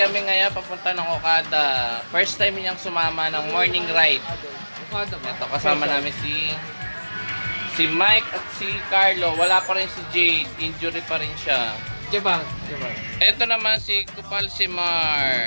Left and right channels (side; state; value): both; inverted; correlation -1.00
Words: ngayon papunta ng Okada. First time niyang sumama ng morning ride. Ito, kasama namin si Mike at si Carlo. Wala pa rin si Jade. Injury pa rin siya. Jebang. Ito naman si Kupal si Mar.